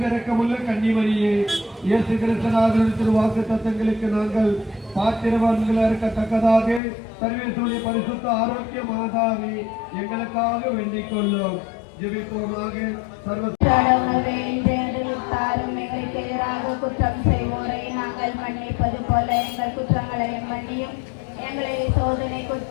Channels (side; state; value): right; drops out; at 6.8 s